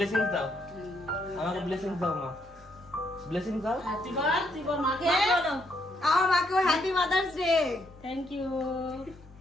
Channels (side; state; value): both; normal; correlation 0.74